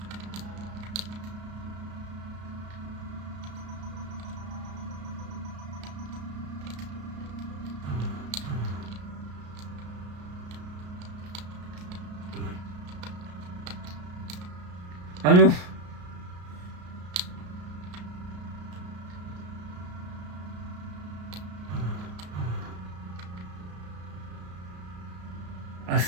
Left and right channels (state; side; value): late; left; 33 ms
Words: Ah non. Ah,